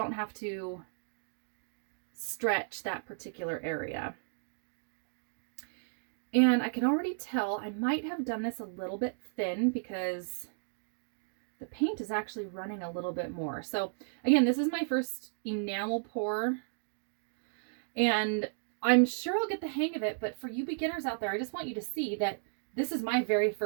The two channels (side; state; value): left; silent; digital silence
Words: have to stretch that particular area. And I can already tell I might have done this a little bit thin because the paint is actually running a little bit more. So again, this is my first enamel pour and I'm sure I'll get the hang of it, but for you beginners out there, I just want you to see that this is my very